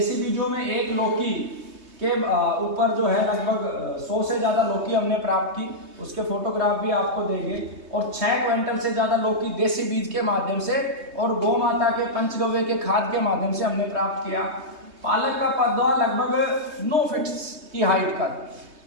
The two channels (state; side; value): late; left; 3.2 ms